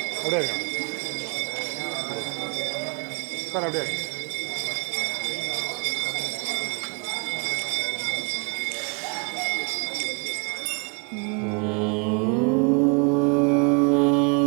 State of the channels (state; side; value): quieter; left; 36.0 dB